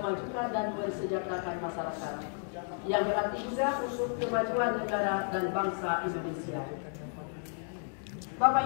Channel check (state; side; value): silent; right; 56 dB below the other